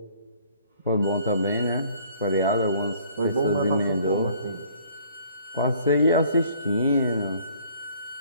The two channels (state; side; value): inverted; both; correlation -0.58